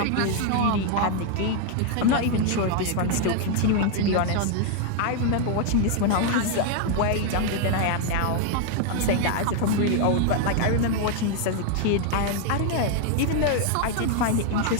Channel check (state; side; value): different; both; correlation 0.00